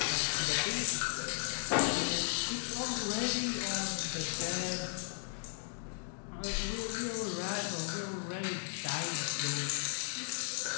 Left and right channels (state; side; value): silent; right; 54 dB below the other